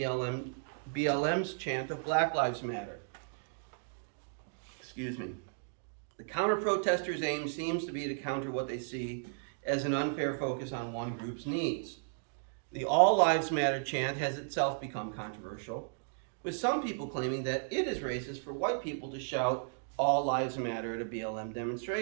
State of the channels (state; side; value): silent; left; digital silence